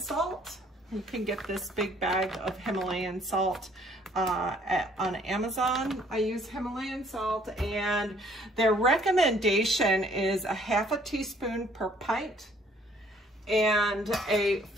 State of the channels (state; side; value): normal; both; correlation 0.61